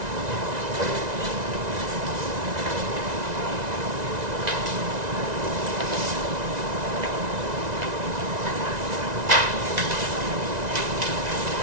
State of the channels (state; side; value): late; left; 1.9 ms